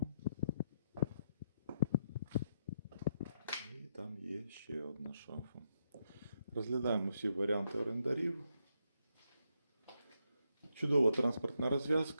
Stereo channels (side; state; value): both; inverted; correlation -0.80